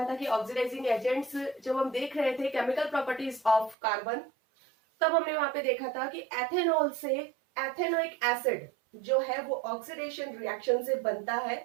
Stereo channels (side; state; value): left; drops out; at 3.8 s